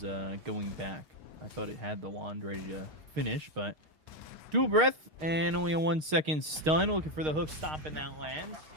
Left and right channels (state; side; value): late; left; 6.5 ms